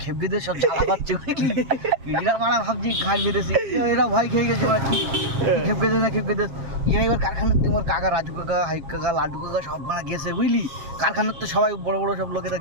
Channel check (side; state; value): left; late; 7.4 ms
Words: খেপে দিয়ে সব জ্বালা পাচ্ছে বুঝলি। এরা মারা ভাবছি খাই বেঁধেছি, এরা ভয় খেয়ে গেছে ওরা কি খেপে দে না খেপে দে। এবার কারখানার তোমার কাকা রাজু কাকা হাইক কাকা লাড্ডু কাকা সব মারা গেছে বুঝলি। কারখানার তো সবাই বড় বড় সব লোকেরা